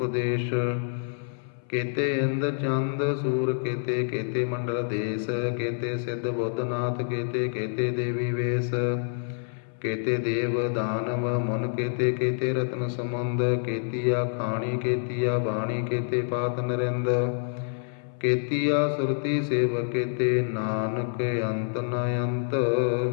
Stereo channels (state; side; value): silent; right; 60 dB below the other